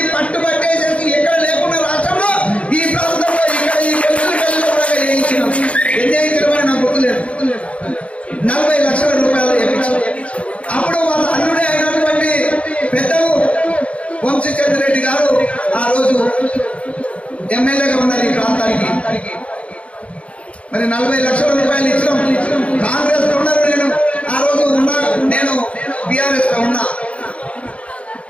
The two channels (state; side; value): late; right; 0.063 ms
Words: పట్టుబట్టేసేసి ఎక్కడ లేకుండా రాష్ట్రంలో ఈ ప్రాంతంలో ఇక్కడ ఈ కొల్కులపల్లిలో కూడా వేయించినాం. ఎన్ని వేయించడం నాకు గుర్తులేదు. 40 లక్షల రూపాయలు వేయించాం. అప్పుడు వాళ్ళ అల్లుడే అయినటువంటి పెద్దలు వంశీచంద్రెడ్డి గారు ఆ రోజు ఎమ్మెల్యేగా ఉన్నారు ఈ ప్రాంతానికి. మరి 40 లక్షల రూపాయలు ఇచ్చినాం. కాంగ్రెస్ లో ఉన్నారు, నేను ఆ రోజు నేను బీఆర్ఎస్ లో ఉన్నా.